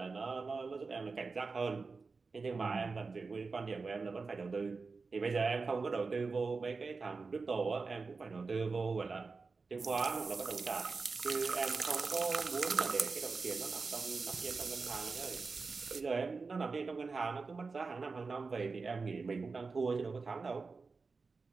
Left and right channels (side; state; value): left; quieter; 4.4 dB